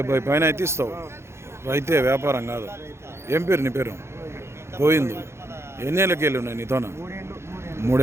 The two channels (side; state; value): left; late; 0.13 ms